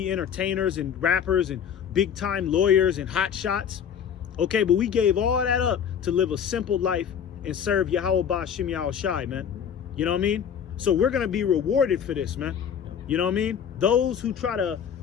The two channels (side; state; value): right; quieter; 8.1 dB